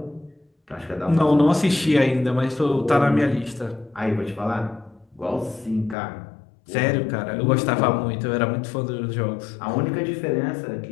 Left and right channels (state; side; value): drops out; right; at 6.0 s